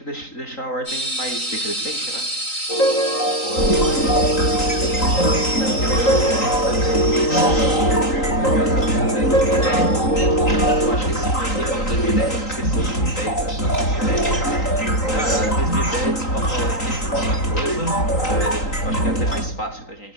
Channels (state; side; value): late; right; 3.9 ms